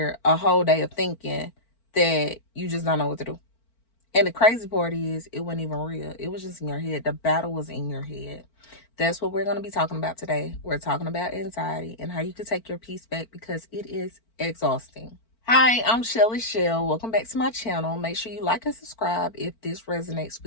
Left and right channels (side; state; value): right; late; 4.4 ms